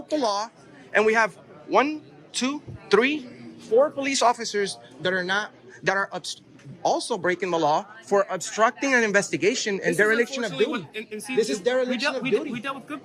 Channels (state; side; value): identical; both; correlation 1.00